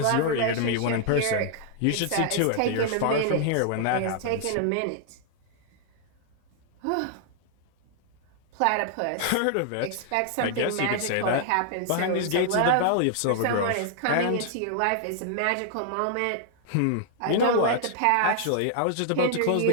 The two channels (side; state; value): both; different; correlation -0.01